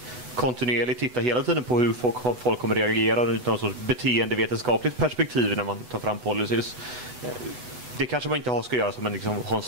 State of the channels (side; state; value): left; late; 8.0 ms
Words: kontinuerligt titta hela tiden på hur folk kommer reagera utan något sorts beteendevetenskapligt perspektiv när man tar fram policies. Det kanske man inte ska göra som ha en